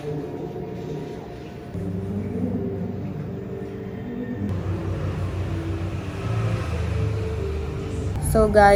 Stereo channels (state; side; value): identical; both; correlation 1.00